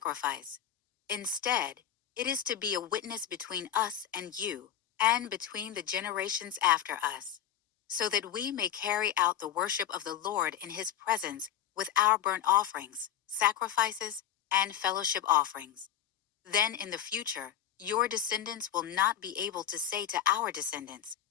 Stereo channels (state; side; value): quieter; right; 10.1 dB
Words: Instead, it is to be a witness between us and you, and between the generations after us, so that we may carry out the worship of the Lord in his presence with our burnt offerings, sacrifices, and fellowship offerings. Then in the future, your descendants will not be able to say to our descendants,